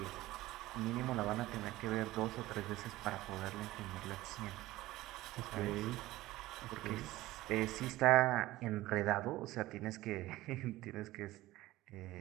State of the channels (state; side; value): quieter; left; 17.2 dB